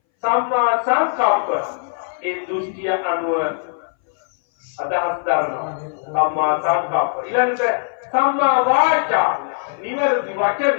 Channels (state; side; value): silent; right; 62 dB below the other